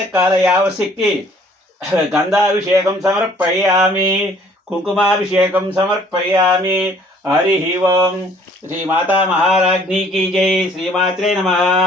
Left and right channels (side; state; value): both; normal; correlation 0.57